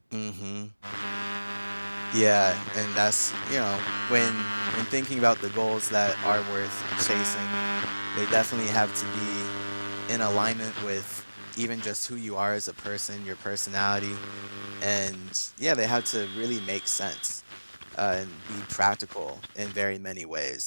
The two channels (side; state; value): both; inverted; correlation -1.00